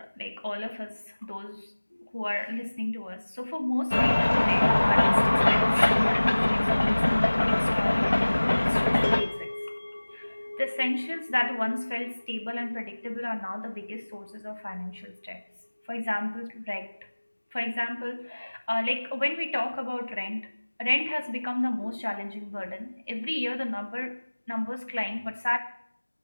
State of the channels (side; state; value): both; inverted; correlation -1.00